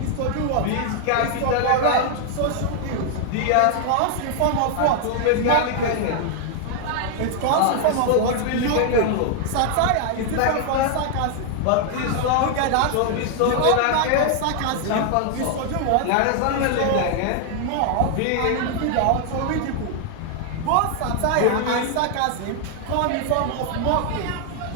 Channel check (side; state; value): both; different; correlation 0.00